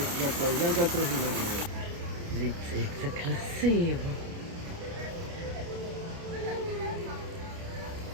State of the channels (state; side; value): late; left; 29 ms